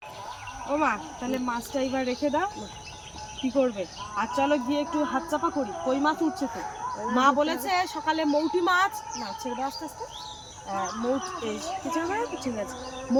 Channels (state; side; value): identical; both; correlation 1.00